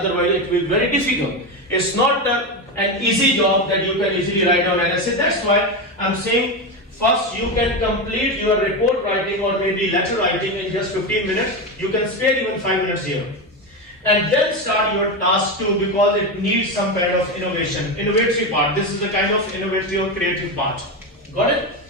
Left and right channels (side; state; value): both; normal; correlation 0.15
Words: it will be very difficult. It's not an easy job that you can easily write down an essay. That's why I'm saying first you can complete your report writing or maybe letter writing in just 15 minutes. You can spare even 5 minutes here. And then start your task 2, because it needs some kind of innovation, innovatory part. This is the kind of innovative or creative part. Got it?